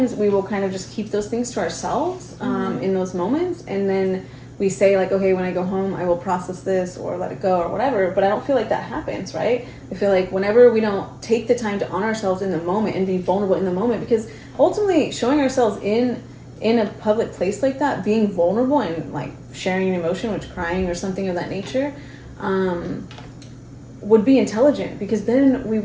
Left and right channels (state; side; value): identical; both; correlation 1.00